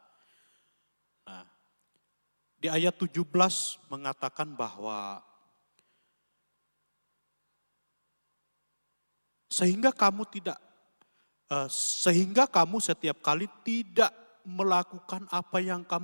Nah, di ayat 17 mengatakan bahwa sehingga kamu setiap kali tidak melakukan apa yang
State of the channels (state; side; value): inverted; both; correlation -1.00